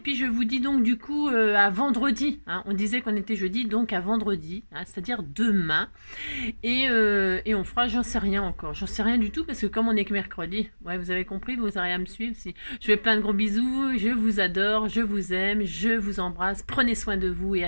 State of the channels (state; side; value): inverted; both; correlation -1.00